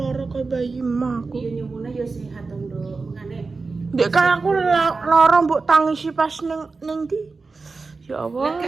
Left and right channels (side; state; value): left; quieter; 4.1 dB